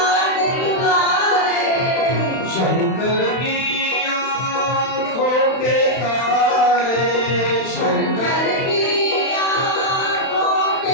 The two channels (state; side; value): late; right; 31 ms